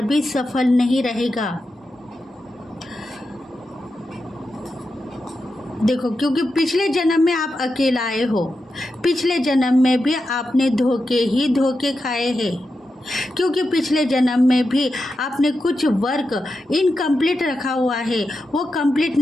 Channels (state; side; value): normal; both; correlation 0.89